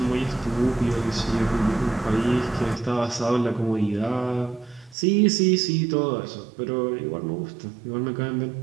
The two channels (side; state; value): left; drops out; at 5.0 s